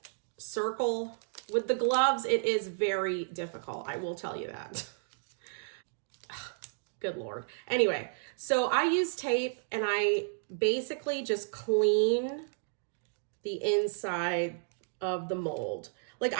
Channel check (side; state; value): left; silent; digital silence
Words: circle. With the gloves, it is very difficult, I will tell you that. Good Lord. Anyway, so I use tape and I basically just clean the inside of the mold. Like